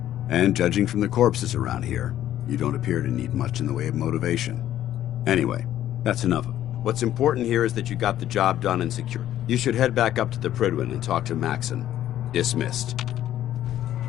And judging from the corpses around here, you don't appear to need much in the way of motivation. Anyway, that's enough. What's important here is that you got the job done and secured. You should head back up to the Prydwen and talk to Maxon. Dismissed.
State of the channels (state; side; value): quieter; right; 12.2 dB